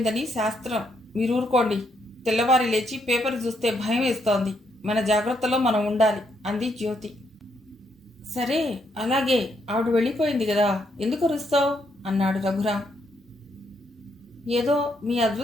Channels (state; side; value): normal; both; correlation 0.76